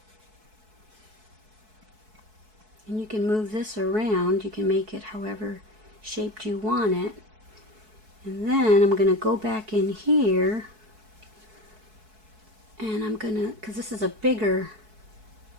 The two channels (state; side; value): late; left; 4.6 ms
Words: And you can move this around. You can make it however shaped you want it. And then I'm going to go back in here. And I'm going to, because this is a bigger